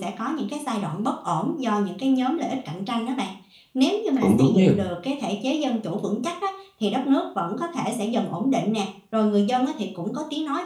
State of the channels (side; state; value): both; identical; correlation 1.00